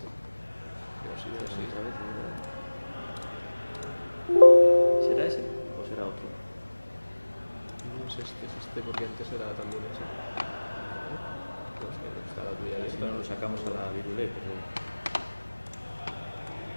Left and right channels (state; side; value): inverted; both; correlation -1.00